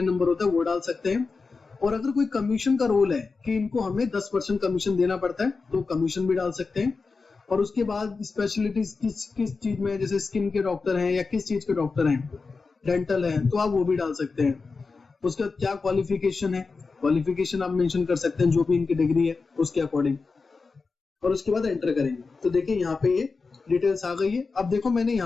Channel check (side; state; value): right; quieter; 4.4 dB